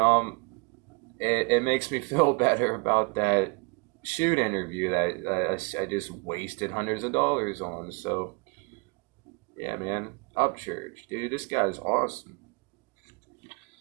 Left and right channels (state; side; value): quieter; left; 31.0 dB